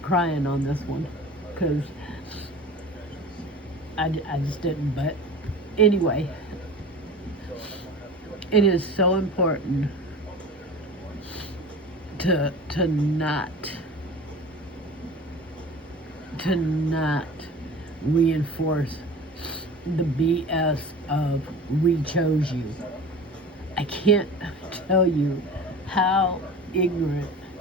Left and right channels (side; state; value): both; normal; correlation 0.37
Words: crying on this one because I just didn't. But anyway, it is so important to not reinforce the BS of we chose you. I can't tell you how ignorant.